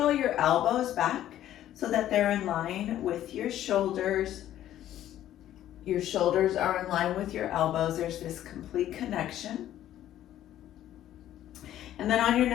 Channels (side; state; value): right; quieter; 12.3 dB